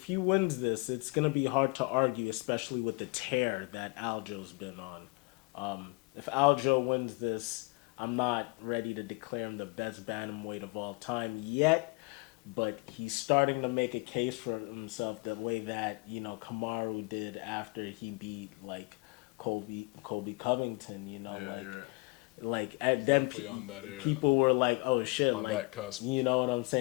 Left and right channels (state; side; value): quieter; right; 28.8 dB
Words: he wins this, it's gonna be hard to argue, especially with the tear that Aljo's been on. If Aljo wins this, I'm not ready to declare him the best bantamweight of all time yet, but he's starting to make a case for himself the way that Kamaru did after he beat like Colby Covington. Yeah, like you're right. like at then Definitely on that era. people were like, oh shit, On like, that cusp. you know what I'm